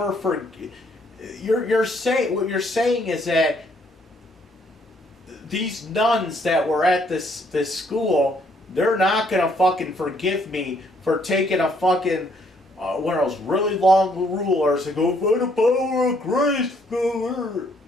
forgive? What you're saying is that these nuns that were at this school, they're not gonna fucking forgive me for taking a fucking one of those really long rulers and go, by the power of grace, go.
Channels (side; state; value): both; normal; correlation 0.67